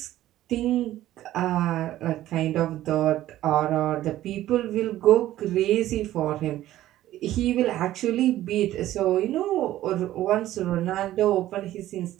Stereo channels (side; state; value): left; quieter; 14.1 dB